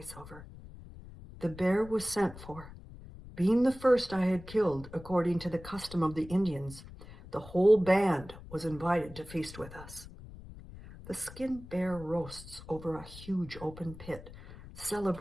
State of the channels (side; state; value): left; noise; rumble, 16 dB below the sound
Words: The bear was sent for. Being the first I had killed, according to the custom of the Indians, the whole band was invited to feast with us. The skinned bear roasts over a huge open pit.